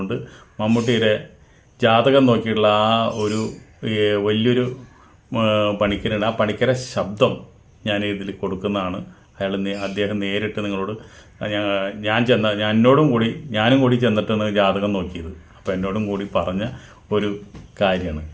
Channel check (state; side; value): identical; both; correlation 1.00